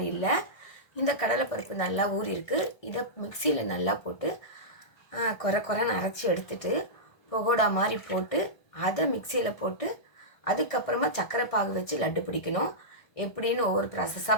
இல்லை. இந்த கடலைப்பருப்பு நல்லா ஊறி இருக்குது. இதை மிக்சியில் நல்லா போட்டு குறைன்னு அரைச்சி எடுத்துட்டு பகோடா மாதிரி போட்டு அதை மிக்சியில் போட்டு அதுக்கப்புறமா சர்க்கரை பாகு வச்சு லட்டு பிடிக்கணும். எப்படின்னு ஒவ்வொரு ப்ராசஸாக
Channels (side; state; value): right; late; 1.4 ms